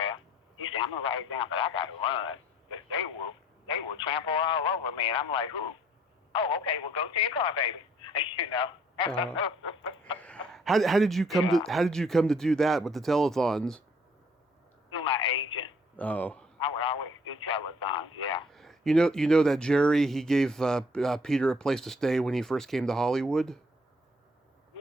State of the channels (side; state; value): both; normal; correlation 0.60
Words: He said, I'm going to write it down, but I got to run. They will trample all over me. And I'm like, who? Oh, okay, well, go to your car, baby. How did you come to do that with the telethons? Through my agent. Oh. I would always do telethons, yeah. You know that Jerry, he gave Peter a place to stay when he first came to Hollywood?